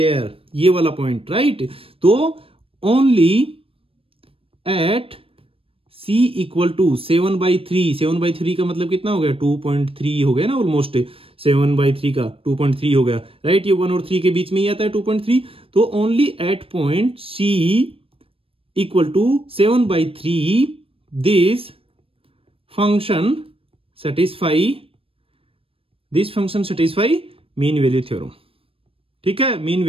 ये वाला पॉइंट, राइट। तो only at C equal to 7/3, 7/3 का मतलब कितना हो गया 2.3 हो गया ना, ऑलमोस्ट 7/3 का 2.3 हो गया, राइट। ये 1 और 3 के बीच में ही आता है 2.3। तो only at point C equal to 7/3 this function satisfy mean value theorem, ठीक है, मीन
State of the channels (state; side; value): late; left; 0.27 ms